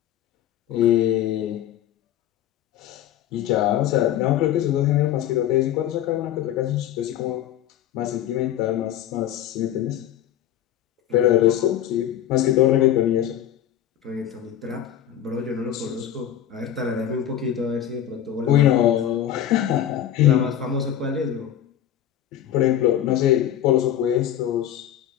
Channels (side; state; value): right; quieter; 10.9 dB